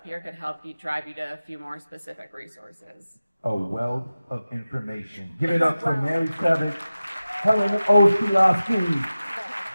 here could help you, drive you to a few more specific resources. A wealth of information. Give it up for Mary Savage, Helen O. Slowski,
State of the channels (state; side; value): inverted; both; correlation -0.96